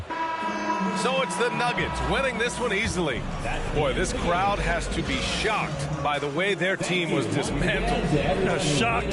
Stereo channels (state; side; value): identical; both; correlation 1.00